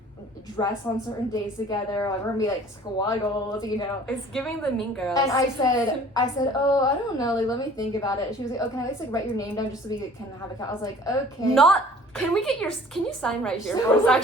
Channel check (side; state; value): both; normal; correlation 0.50